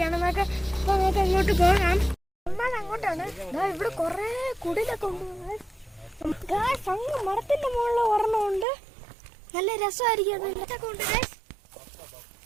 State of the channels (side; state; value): left; drops out; at 8.7 s